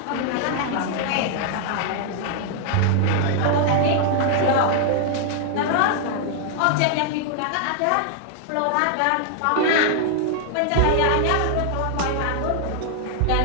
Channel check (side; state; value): both; different; correlation 0.00